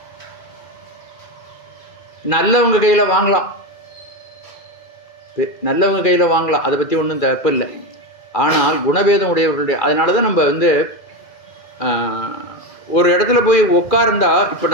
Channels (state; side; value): late; right; 2.4 ms